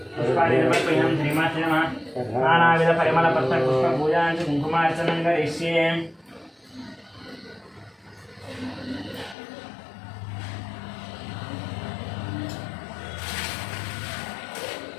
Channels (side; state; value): right; drops out; at 9.3 s